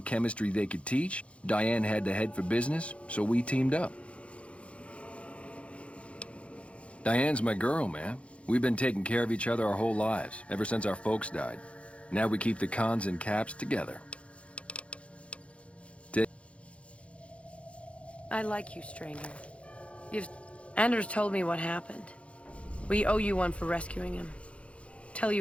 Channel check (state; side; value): late; right; 0.061 ms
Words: chemistry they could teach. Diane had to head for business, so we teamed up. Diane's my girl, man. We've been taking care of each other our whole lives, ever since our folks died. Now we keep the cons and caps together. I like you, stranger. Anders told me what happened. We owe you one for rescuing him. Tell